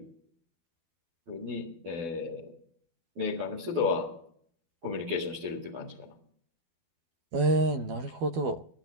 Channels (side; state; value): left; late; 12 ms